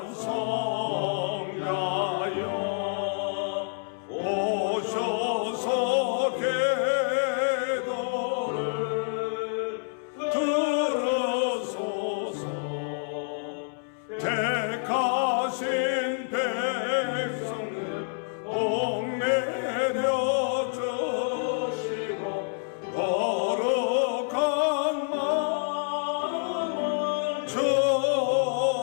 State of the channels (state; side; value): silent; right; 60 dB below the other